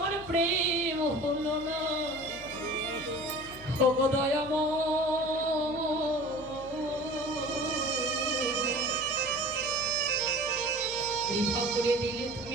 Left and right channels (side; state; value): left; noise; hum, 19 dB below the sound